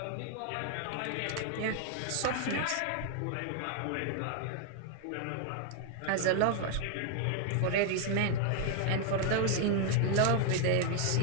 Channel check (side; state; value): both; different; correlation 0.00